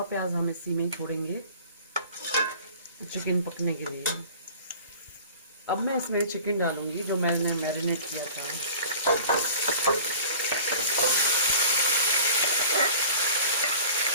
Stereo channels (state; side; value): inverted; both; correlation -0.44